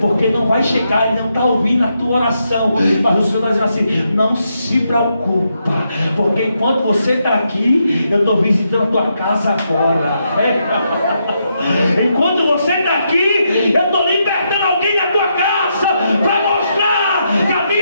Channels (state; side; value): inverted; both; correlation -0.81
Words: não vai chegar, ele não está ouvindo a tua oração. Mas o Senhor está dizendo assim, não se preocupa, porque enquanto você está aqui, eu estou visitando a tua casa agora. Enquanto você está aqui, eu estou libertando alguém da tua casa, para mostrar que a